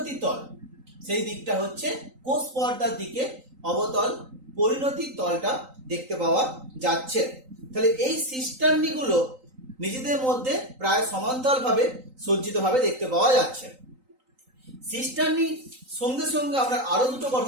তল, সেই দিকটা হচ্ছে কোষ পর্দার দিকে অবতল পরিণতি তলটা দেখতে পাওয়া যাচ্ছে। তাহলে এই সিস্টার্নিগুলো নিজেদের মধ্যে প্রায় সমান্তরালভাবে সজ্জিতভাবে দেখতে পাওয়া যাচ্ছে। সিস্টার্নি সঙ্গে সঙ্গে আমরা আরো দুটো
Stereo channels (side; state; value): left; late; 3.9 ms